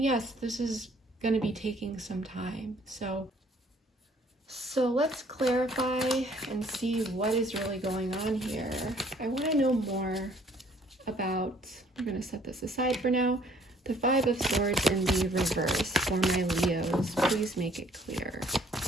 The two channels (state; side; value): normal; both; correlation 0.59